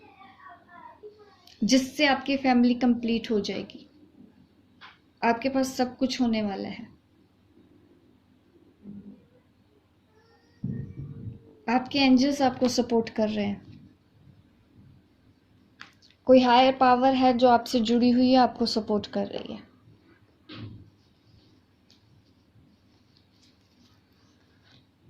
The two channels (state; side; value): identical; both; correlation 1.00